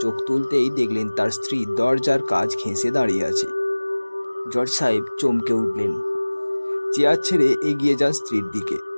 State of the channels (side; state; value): both; inverted; correlation -1.00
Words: চোখ তুলতেই দেখলেন তার স্ত্রী দরজার কাজ ঘেঁষে দাঁড়িয়ে আছে। জজ সাহেব চমকে উঠলেন, চেয়ার ছেড়ে এগিয়ে যান স্ত্রীর দিকে।